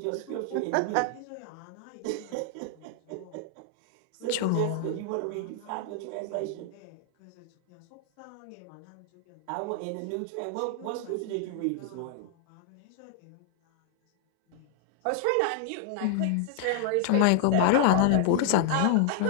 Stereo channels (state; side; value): different; both; correlation -0.01